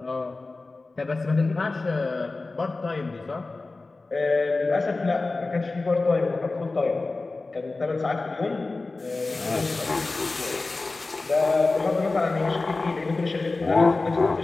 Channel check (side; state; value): right; quieter; 3.5 dB